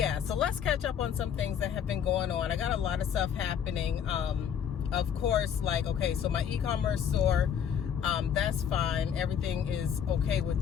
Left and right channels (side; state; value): right; quieter; 8.3 dB